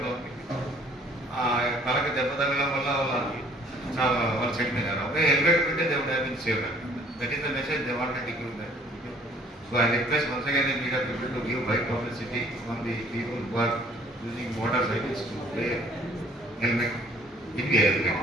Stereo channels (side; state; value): both; normal; correlation 0.58